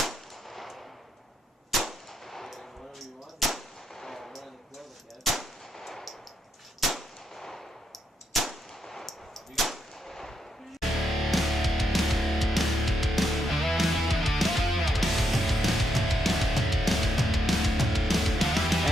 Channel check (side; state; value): both; normal; correlation 0.80